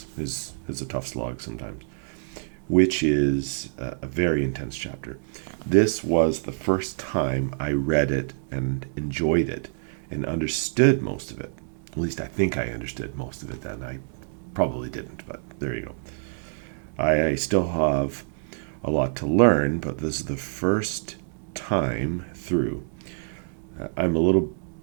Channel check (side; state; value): left; silent; 60 dB below the other